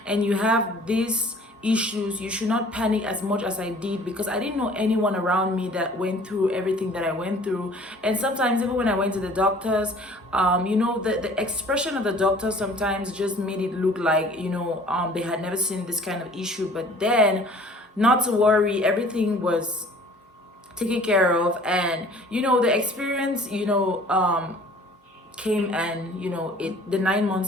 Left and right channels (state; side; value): normal; both; correlation 0.51